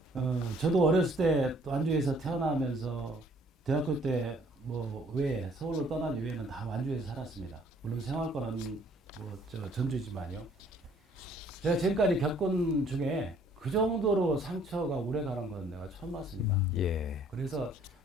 저도 어렸을 때 완주에서 태어나면서 대학교 때 뭐 외에 서울로 떠난 이후에는 다 완주에서 살았습니다. 물론 생활권은 뭐 전주지만요. 제가 지금까지 겪은 중에 그 정도로 상처가 오래 가는 건 내가 처음 봤습니다. 예. 그래서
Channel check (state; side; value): normal; both; correlation 0.60